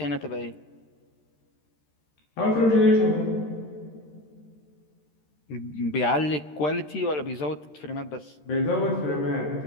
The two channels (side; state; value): right; late; 13 ms